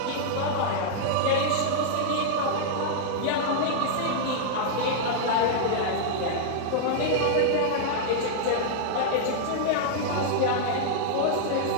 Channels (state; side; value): different; both; correlation -0.02